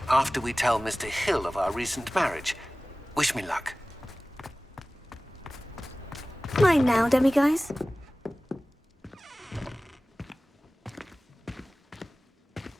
after we tell Mr. Hill of our recent marriage. Wish me luck. Mine now, demiguise.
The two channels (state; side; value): normal; both; correlation 0.98